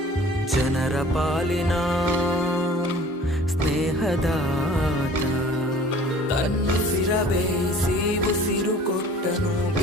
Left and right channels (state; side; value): normal; both; correlation 0.48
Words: ಜನರ ಪಾಲಿನ ಸ್ನೇಹದಾತ ತನ್ನುಸಿರ ಬೇಯಿಸಿ ಉಸಿರು ಕೊಟ್ಟನು